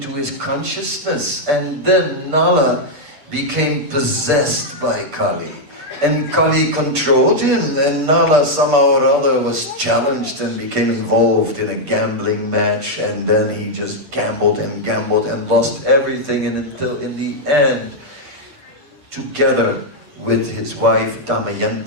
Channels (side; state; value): left; late; 8.2 ms